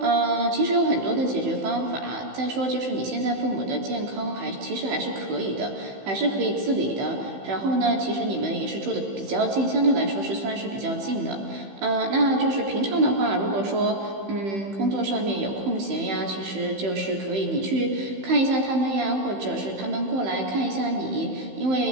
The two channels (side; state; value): left; late; 15 ms